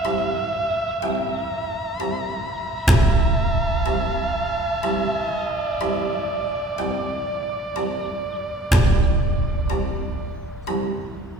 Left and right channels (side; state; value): both; normal; correlation 0.53